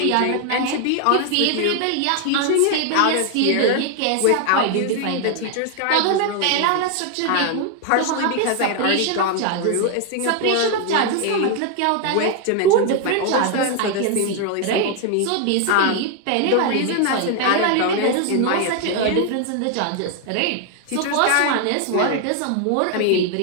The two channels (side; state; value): both; different; correlation 0.00